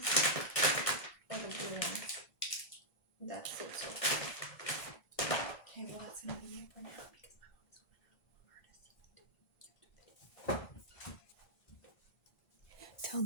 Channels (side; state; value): right; late; 2.5 ms